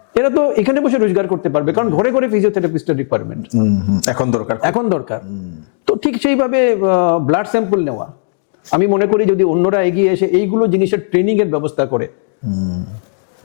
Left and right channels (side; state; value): right; silent; digital silence